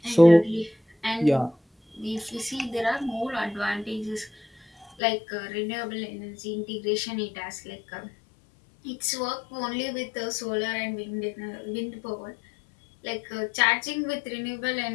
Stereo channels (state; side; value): drops out; right; at 5.0 s